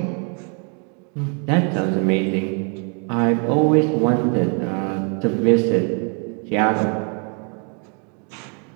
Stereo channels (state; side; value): quieter; left; 38.3 dB